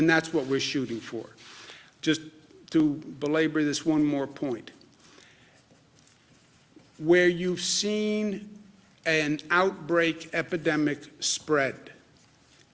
that's what we're shooting for. Just to belabor this one more point. Where you've seen an outbreak epidemic spread,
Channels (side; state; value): both; identical; correlation 1.00